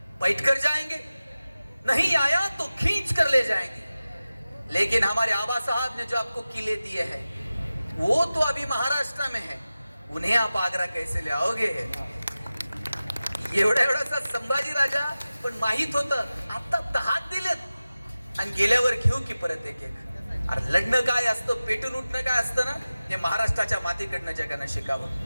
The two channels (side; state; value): both; inverted; correlation -0.96